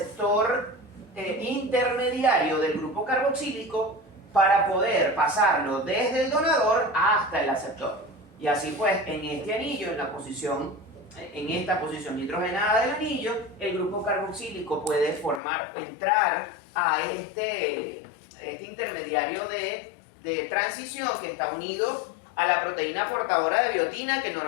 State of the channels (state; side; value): drops out; right; at 15.4 s